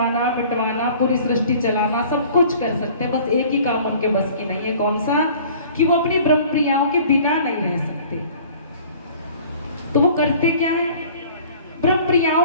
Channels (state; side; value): inverted; both; correlation -0.49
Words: मिटवाना, पूरी सृष्टि चलाना, सब कुछ कर सकते हैं, बस एक ही काम उनके बस की नहीं है। कौन सा? कि वो अपनी ब्रह्म प्रियाओं के बिना नहीं रह सकते। तो वो करते क्या है, ब्रह्म प्रियाओं